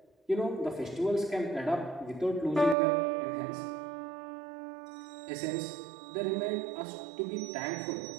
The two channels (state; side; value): drops out; left; at 2.8 s